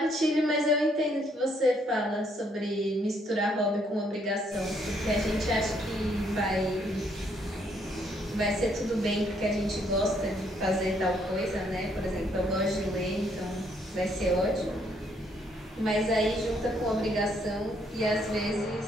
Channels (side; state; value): both; normal; correlation 0.69